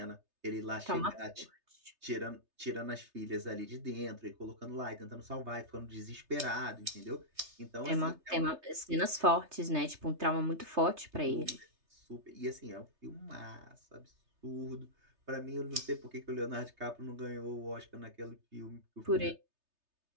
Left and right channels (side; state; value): left; late; 3.3 ms